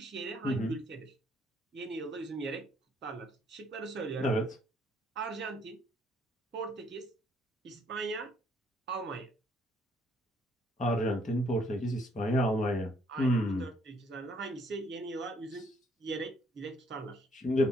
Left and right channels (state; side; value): normal; both; correlation 0.67